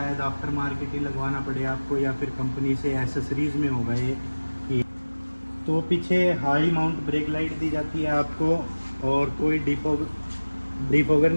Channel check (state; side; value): inverted; both; correlation -1.00